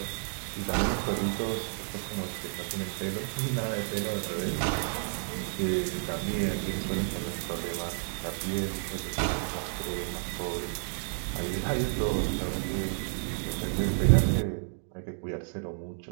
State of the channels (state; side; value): silent; left; digital silence